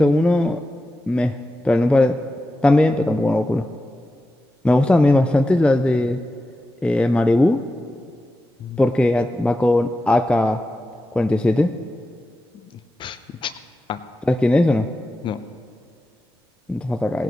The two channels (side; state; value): both; normal; correlation 0.92